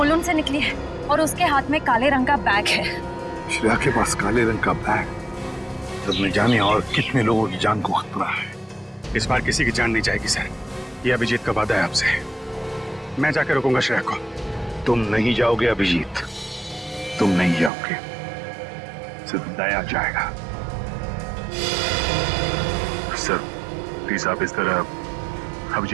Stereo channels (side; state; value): left; drops out; at 17.7 s